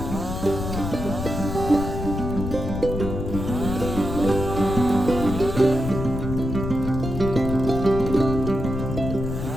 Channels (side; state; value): left; noise; rumble, 5 dB below the sound